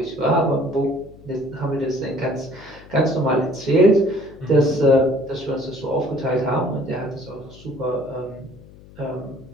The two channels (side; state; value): left; noise; hum, 21 dB below the sound